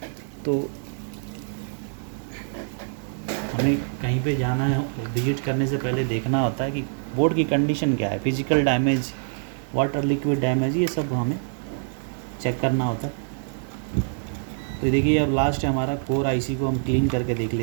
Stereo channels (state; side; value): silent; left; digital silence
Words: तो हमें कहीं पे जाना है, विजिट करने से पहले देखना होता है कि बोर्ड की कंडीशन क्या है, physical damage, water liquid damage, ये सब हमें चेक करना होता है। तो देखिए अब लास्ट है हमारा कोर आईसी को हम क्लीन करके देख